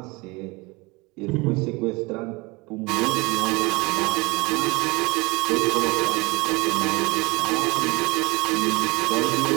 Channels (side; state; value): left; quieter; 25.0 dB